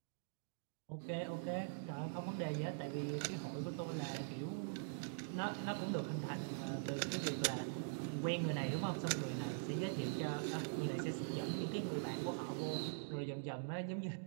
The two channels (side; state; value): left; silent; digital silence